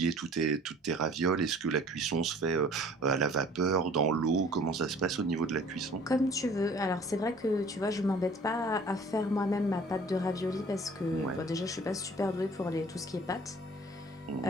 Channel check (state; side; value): normal; both; correlation 0.50